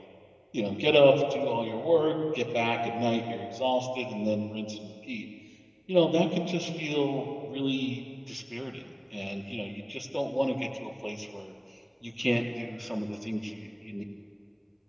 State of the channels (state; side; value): identical; both; correlation 1.00